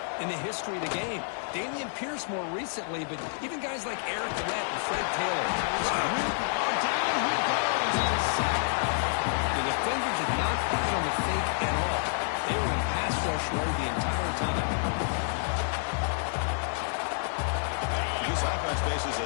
in the history of the game. Damian Pierce more recently, but even guys like Eric Lett and Fred Taylor. Down he goes. The defender did not hit on the fake at all. They were in pass rush mode the entire time. This offense faces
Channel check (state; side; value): silent; right; digital silence